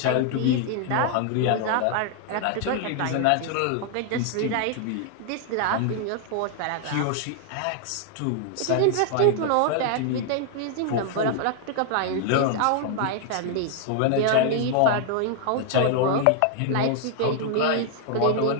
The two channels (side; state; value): both; different; correlation 0.00